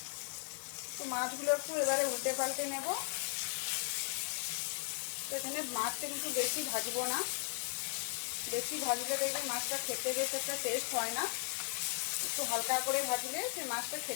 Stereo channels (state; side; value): silent; right; digital silence